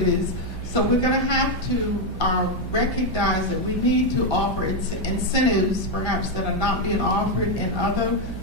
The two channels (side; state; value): right; noise; hum, 8 dB below the sound